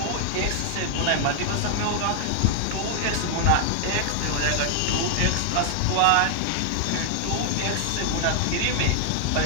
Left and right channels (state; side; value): different; both; correlation 0.00